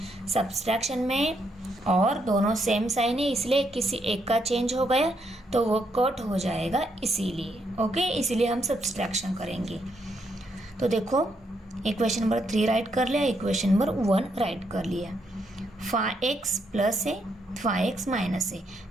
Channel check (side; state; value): both; normal; correlation 0.77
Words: सब्सट्रैक्शन में और दोनों सेम साइन है, इसलिए किसी एक का चेंज हो गया तो वो कट हो जाएगा, इसीलिए। ओके, इसीलिए हम सब्सट्रैक्शन करेंगे। तो देखो इक्वेशन नंबर 3 राइट कर लिया, इक्वेशन नंबर 1 राइट कर लिया। 5x प्लस है, 5x माइनस है,